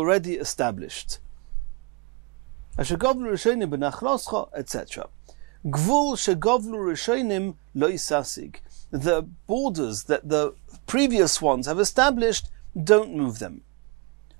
established. Asher govlu rishonim benachloscha, etc. Gvul shegovlu rishonim lo isasig. The borders that the previous ones have established, don't move them.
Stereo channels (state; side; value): quieter; left; 26.9 dB